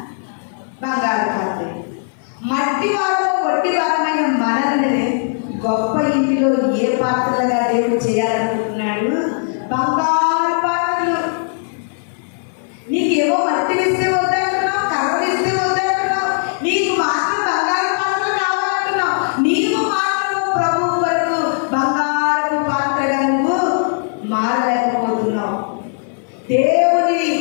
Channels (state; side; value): silent; right; 57 dB below the other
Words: బంగారు పాత్రయు. మట్టి వారము కొట్టి వారమైన మనల్ని గొప్ప ఇంటిలో ఏ పాత్రలుగా దేవుడు చేయాలనుకుంటున్నాడు? బంగారు పాత్రలు. నీకేమో మట్టి ఇస్తే వద్దంటున్నావు, కర్రలు ఇస్తే వద్దంటున్నావు, నీకు మాత్రం బంగారు పాత్రలు కావాలంటున్నావు. నీవు మాత్రం ప్రభు వరకు బంగారు పాత్రగా నువ్వు మారలేకపోతున్నావు. దేవుని